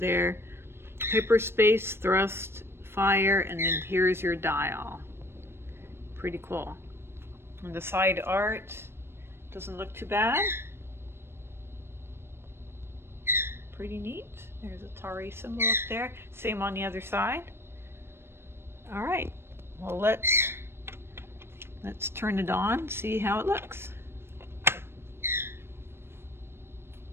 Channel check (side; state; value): left; late; 0.12 ms